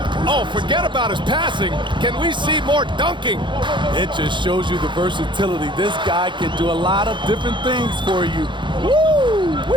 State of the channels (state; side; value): late; left; 0.23 ms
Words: Oh, forget about his passing. Can we see more dunking? It just shows you the versatility. This guy can do a lot of different things for you.